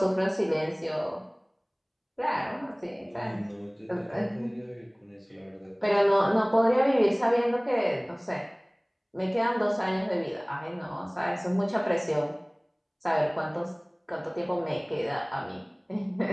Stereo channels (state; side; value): identical; both; correlation 1.00